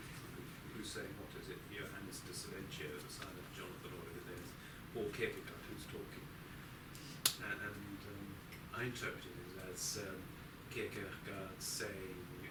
who's saying what? Is it Johannes de Silentio, the son of Jonathan, or whatever it is, or Kierkegaard who's talking? And I interpreted it as Kierkegaard saying,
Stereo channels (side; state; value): both; identical; correlation 1.00